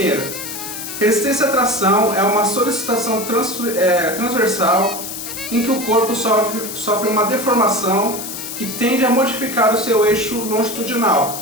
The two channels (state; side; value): noise; left; hiss, 8 dB below the sound